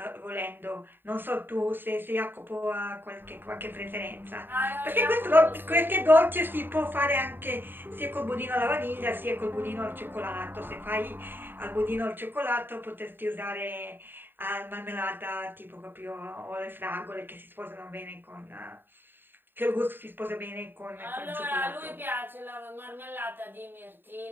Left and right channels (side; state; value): left; late; 0.095 ms